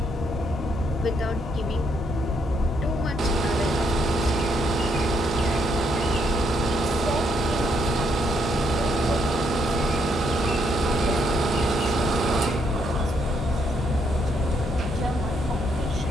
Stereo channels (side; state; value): both; normal; correlation 0.74